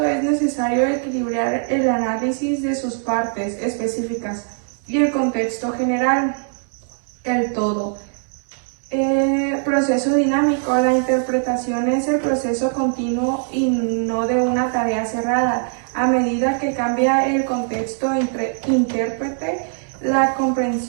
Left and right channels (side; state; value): left; silent; 58 dB below the other